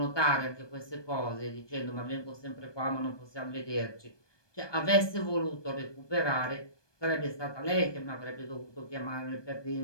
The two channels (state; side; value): late; right; 1.2 ms